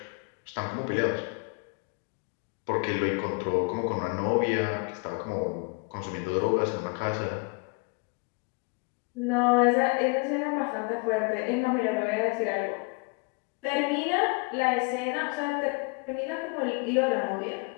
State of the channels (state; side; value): quieter; right; 31.9 dB